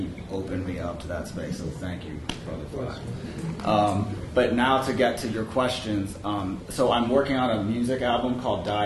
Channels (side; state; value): both; identical; correlation 1.00